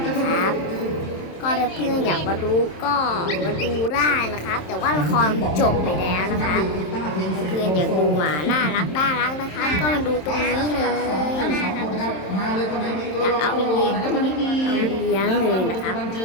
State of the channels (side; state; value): right; late; 27 ms